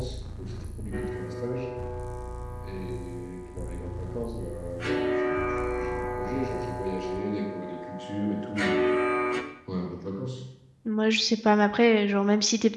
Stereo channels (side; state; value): both; identical; correlation 1.00